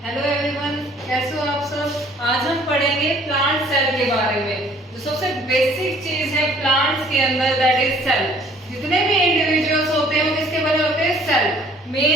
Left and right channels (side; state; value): both; normal; correlation 0.56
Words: everyone, कैसे हो आप सब। आज हम पढ़ेंगे प्लांट सेल के बारे में। जो सबसे बेसिक चीज है प्लांट्स के अंदर, दैट इज सेल। जितने भी इंडिविजुअल्स होते हैं वो किसके बने होते हैं? सेल।